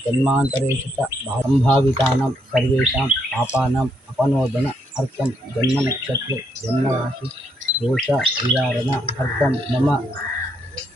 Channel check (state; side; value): normal; both; correlation 0.75